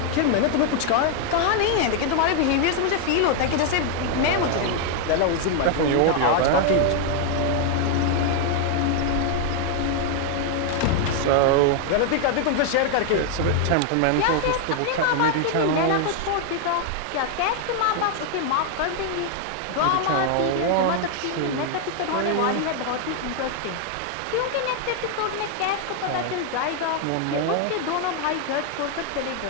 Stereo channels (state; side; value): different; both; correlation 0.00